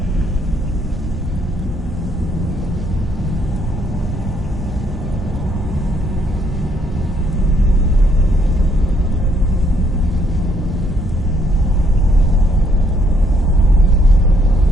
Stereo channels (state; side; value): normal; both; correlation 0.70